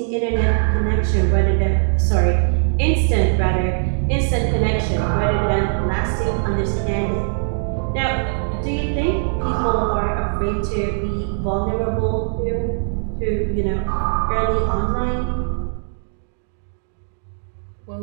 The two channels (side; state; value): left; silent; digital silence